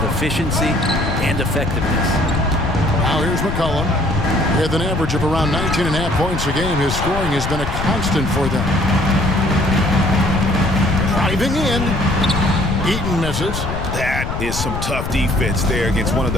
efficiency and effectiveness. Now here's McCollum. With an average of around 19.5 points a game, his scoring has been a constant for them. Driving in. Eaton misses. That is some tough defense there against one of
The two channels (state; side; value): noise; left; rumble, 5 dB below the sound